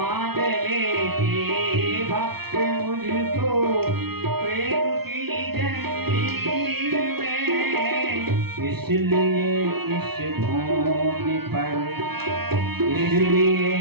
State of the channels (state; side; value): late; left; 0.96 ms